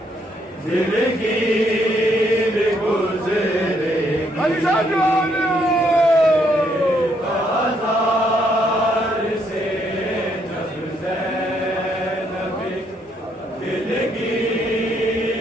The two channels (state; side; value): normal; both; correlation 0.72